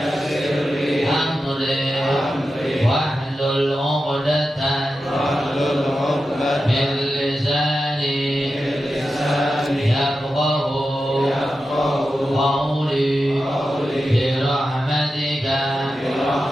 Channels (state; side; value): normal; both; correlation 0.91